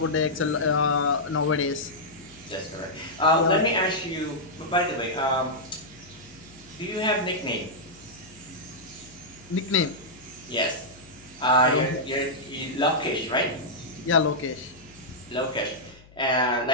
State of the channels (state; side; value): noise; left; hum, 24 dB below the sound